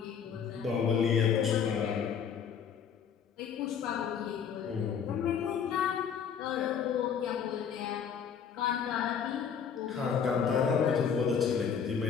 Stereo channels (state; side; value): quieter; right; 7.3 dB